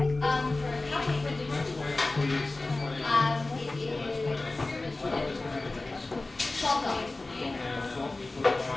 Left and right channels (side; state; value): right; quieter; 3.1 dB